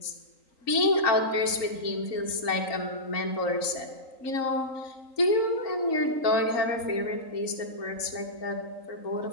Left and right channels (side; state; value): right; late; 3.9 ms